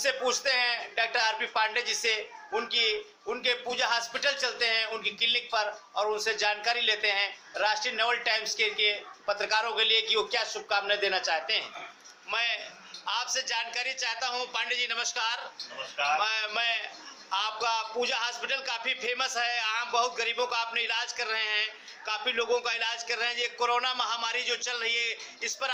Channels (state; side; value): identical; both; correlation 1.00